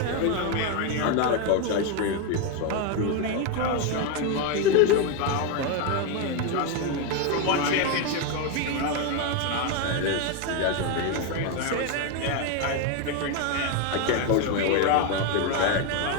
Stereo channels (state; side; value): different; both; correlation 0.02